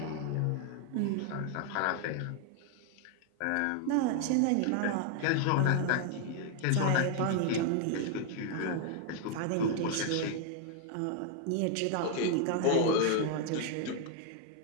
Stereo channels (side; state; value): both; different; correlation 0.00